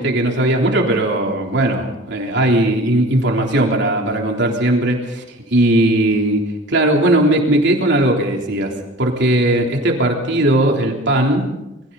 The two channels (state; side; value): normal; both; correlation 0.41